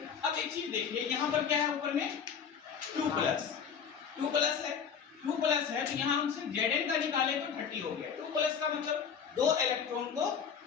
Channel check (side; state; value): right; quieter; 7.1 dB